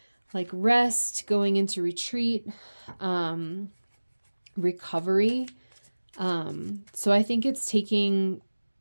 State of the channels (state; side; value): inverted; both; correlation -1.00